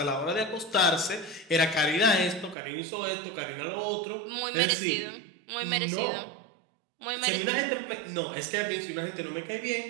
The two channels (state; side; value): drops out; left; at 2.6 s